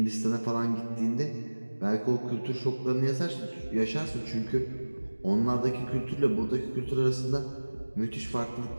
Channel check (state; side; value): inverted; both; correlation -1.00